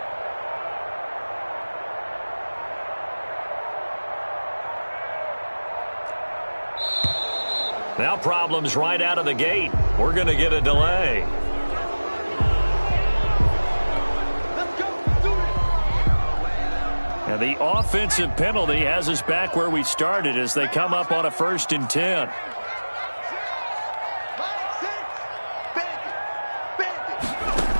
Now problems right out of the gate. We're going to get a delay. And the offensive penalty has us back where we started as they come up on a 1st and 10.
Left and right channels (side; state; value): both; inverted; correlation -1.00